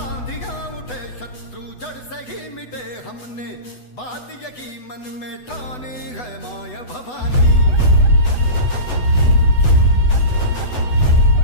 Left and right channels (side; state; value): right; late; 8.0 ms